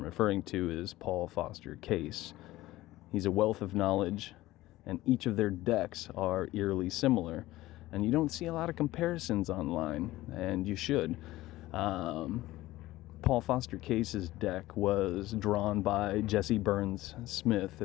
referring to is Paul Foster Case. He's a wealth of knowledge, and each of their decks are eerily similar. And you don't see a lot of comparisons online, and you should. Paul Foster Case's deck was drawn by Jesse Burns Smith,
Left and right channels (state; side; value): quieter; right; 17.1 dB